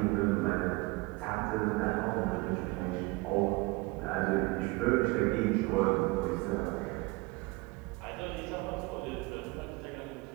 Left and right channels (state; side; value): quieter; left; 24.6 dB